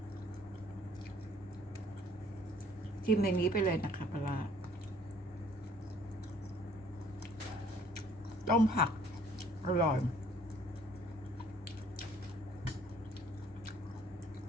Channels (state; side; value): normal; both; correlation 0.58